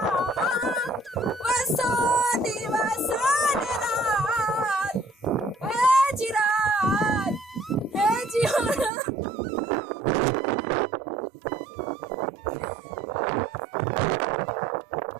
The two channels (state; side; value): drops out; left; at 8.9 s